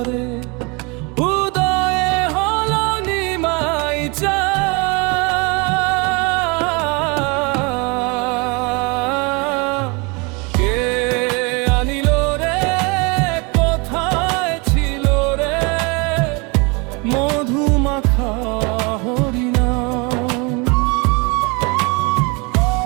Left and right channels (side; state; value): left; quieter; 29.5 dB